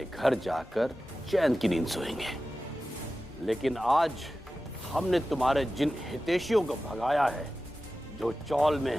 घर जाकर चैन की नींद सोएंगे। लेकिन आज हमने तुम्हारे जिन हितैषियों को भगाया है, जो चौल में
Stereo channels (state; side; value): normal; both; correlation 0.95